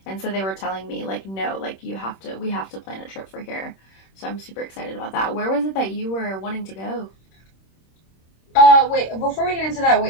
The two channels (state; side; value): late; right; 26 ms